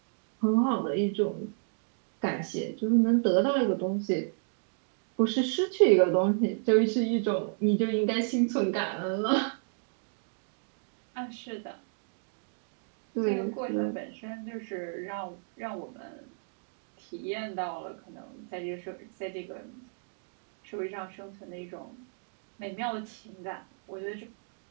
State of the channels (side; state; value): left; silent; digital silence